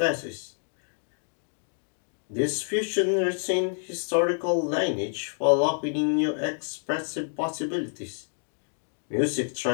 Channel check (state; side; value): silent; right; 58 dB below the other